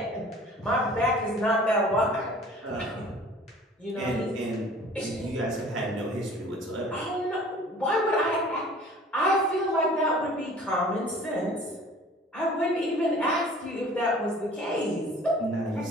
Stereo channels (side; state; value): both; normal; correlation 0.48